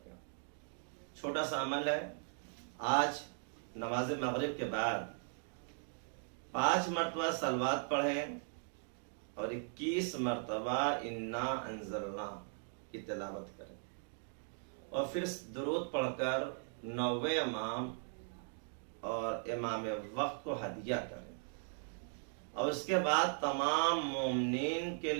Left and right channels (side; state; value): left; silent; 52 dB below the other